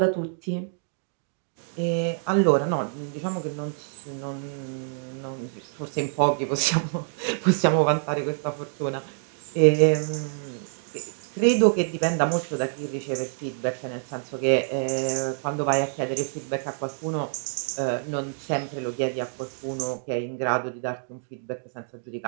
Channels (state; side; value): silent; left; digital silence